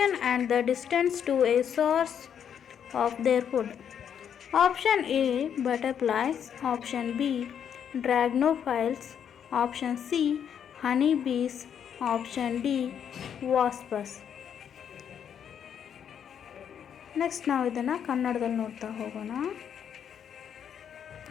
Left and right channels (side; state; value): right; quieter; 8.4 dB